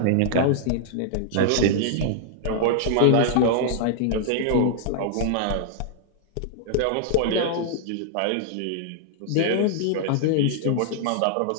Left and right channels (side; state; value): both; different; correlation -0.01